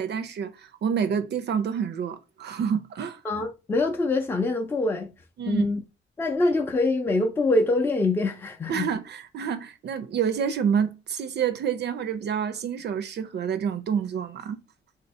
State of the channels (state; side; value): normal; both; correlation 0.58